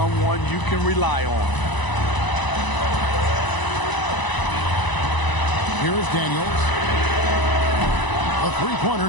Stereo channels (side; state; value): right; late; 1.0 ms